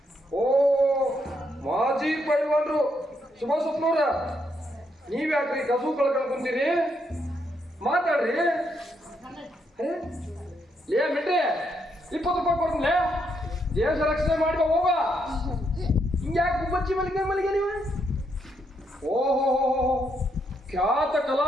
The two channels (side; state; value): both; normal; correlation 0.77